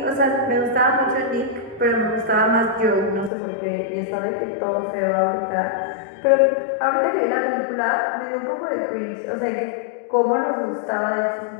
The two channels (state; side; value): drops out; right; at 3.3 s